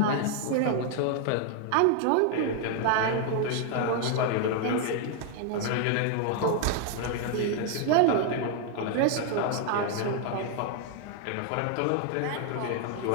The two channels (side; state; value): both; different; correlation 0.00